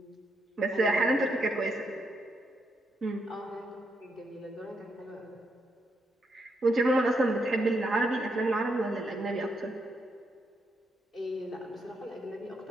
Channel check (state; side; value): normal; both; correlation 0.79